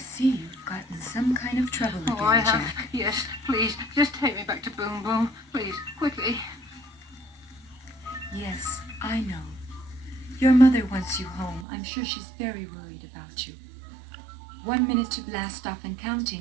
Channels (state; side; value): drops out; left; at 11.7 s